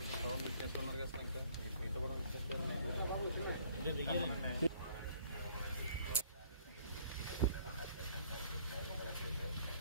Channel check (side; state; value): both; inverted; correlation -0.59